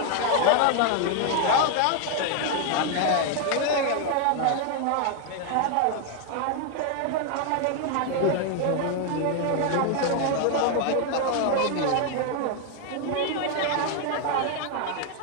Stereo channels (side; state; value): both; different; correlation 0.00